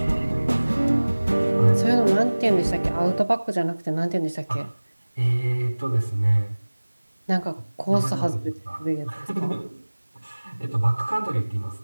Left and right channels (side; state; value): both; inverted; correlation -1.00